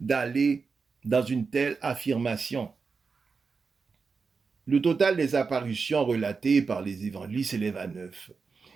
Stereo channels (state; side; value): quieter; left; 4.9 dB